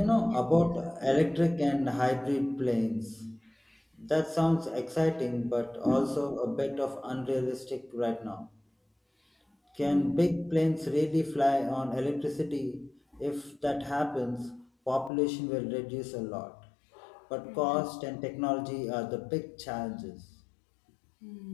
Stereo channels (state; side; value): drops out; right; at 15.1 s